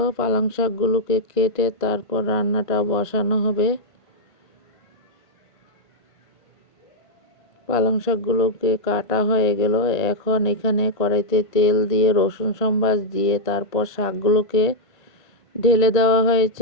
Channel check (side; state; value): right; late; 1.5 ms